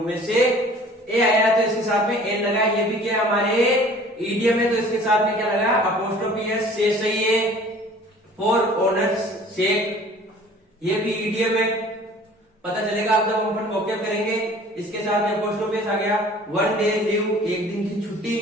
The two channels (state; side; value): normal; both; correlation 0.49